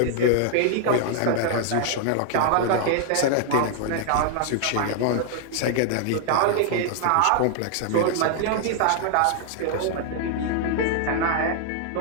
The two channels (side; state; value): both; different; correlation 0.00